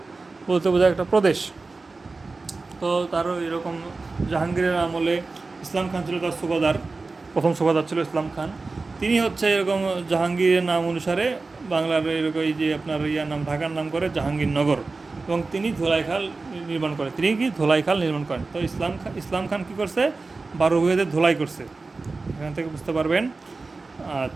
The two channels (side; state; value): left; quieter; 3.8 dB